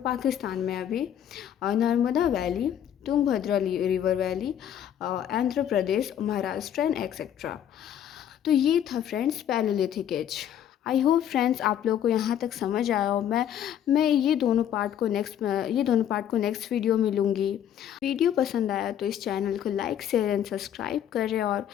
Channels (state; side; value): quieter; right; 10.0 dB